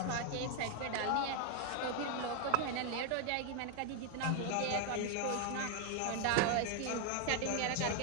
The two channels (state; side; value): different; both; correlation 0.01